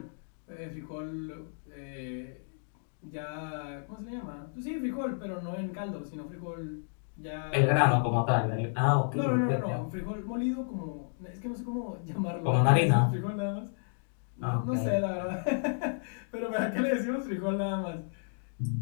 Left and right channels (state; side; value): silent; right; digital silence